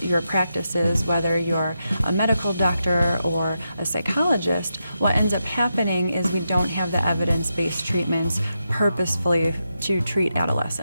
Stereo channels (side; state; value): both; inverted; correlation -0.86